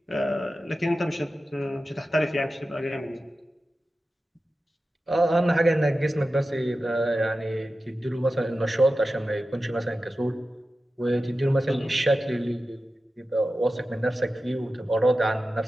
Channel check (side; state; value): both; normal; correlation 0.93